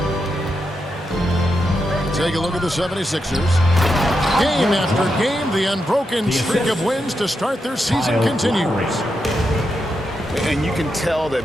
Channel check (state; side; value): normal; both; correlation 0.85